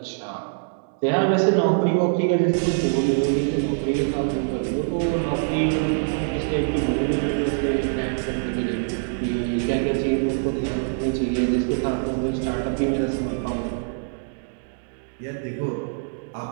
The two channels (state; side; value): silent; left; digital silence